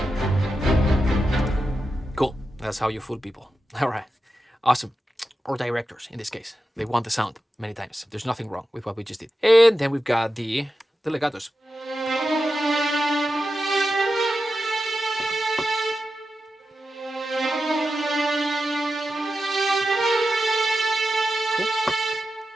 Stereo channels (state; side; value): normal; both; correlation 0.91